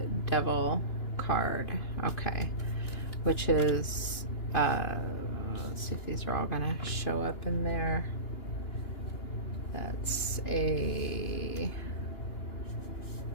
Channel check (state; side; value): late; right; 2.9 ms